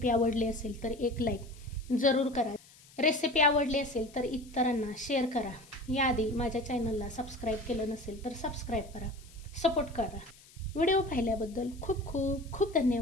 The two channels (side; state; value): left; noise; hiss, 24 dB below the sound